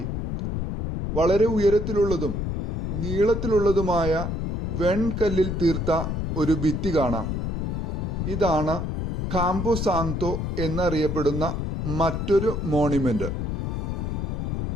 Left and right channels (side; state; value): left; noise; rumble, 2 dB below the sound